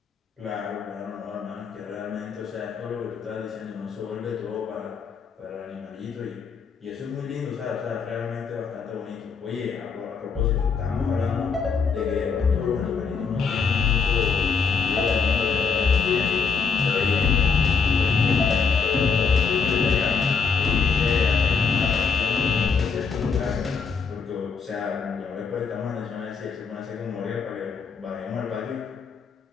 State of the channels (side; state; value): right; quieter; 5.6 dB